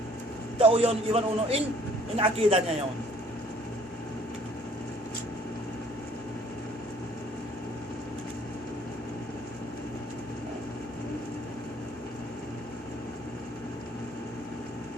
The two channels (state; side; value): normal; both; correlation 0.58